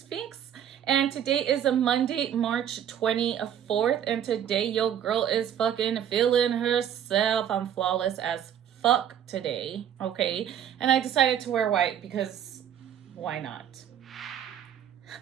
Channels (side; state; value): left; quieter; 9.6 dB